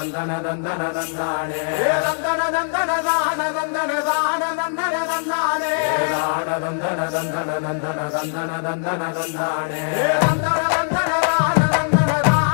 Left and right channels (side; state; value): right; silent; 57 dB below the other